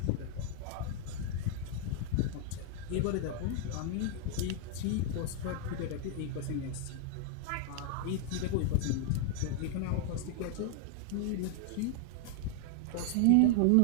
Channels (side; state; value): both; different; correlation 0.00